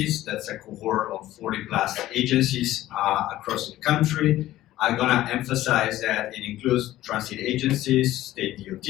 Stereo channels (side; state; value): right; quieter; 14.9 dB